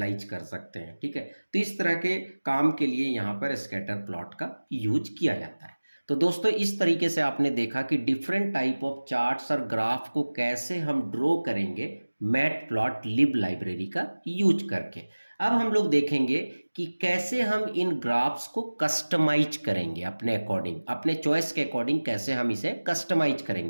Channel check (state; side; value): inverted; both; correlation -1.00